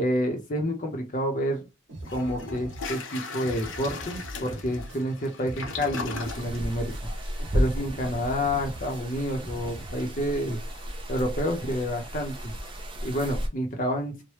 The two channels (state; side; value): normal; both; correlation 0.60